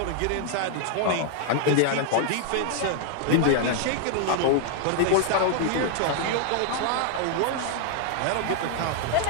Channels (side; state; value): both; different; correlation 0.00